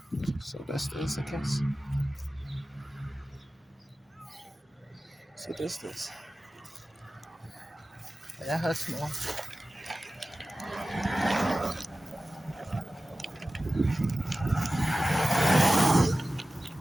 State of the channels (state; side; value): normal; both; correlation 0.95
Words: So that's this, I guess. So this. That hurts more.